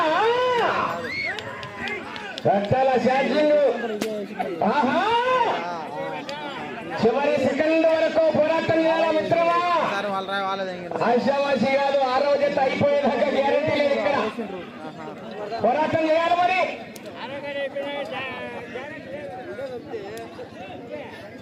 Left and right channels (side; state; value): both; identical; correlation 1.00